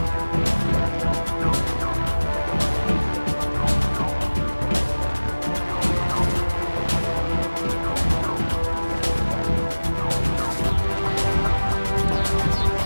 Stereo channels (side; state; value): both; inverted; correlation -1.00